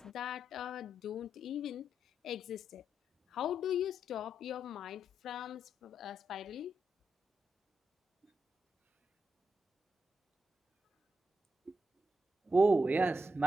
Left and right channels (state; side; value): normal; both; correlation 0.84